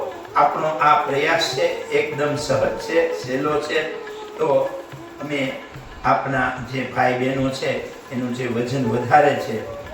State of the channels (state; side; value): identical; both; correlation 1.00